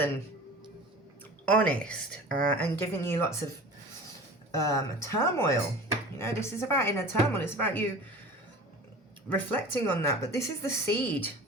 honest and given you lots of turmoil. You know, this is about inner turmoil. It's about you reflecting on that. But this is the seed,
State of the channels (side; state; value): both; normal; correlation 0.39